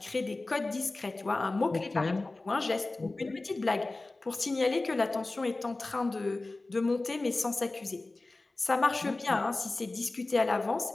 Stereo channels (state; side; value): quieter; right; 3.1 dB